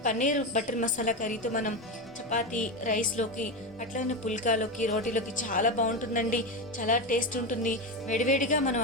పన్నీర్ బటర్ మసాలా కర్రీతో మనం చపాతీ, రైస్లోకి, అట్లనే పుల్కాలోకి, రోటీలోకి చాలా బాగుంటుందండి. చాలా టేస్ట్ ఉంటుంది. వేడివేడిగా మనం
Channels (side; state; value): both; normal; correlation 0.15